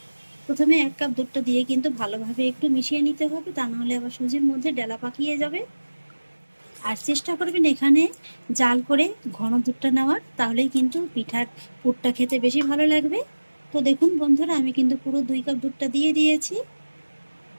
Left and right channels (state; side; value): inverted; both; correlation -1.00